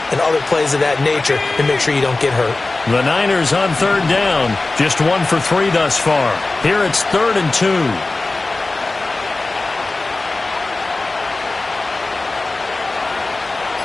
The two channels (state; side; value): quieter; right; 3.3 dB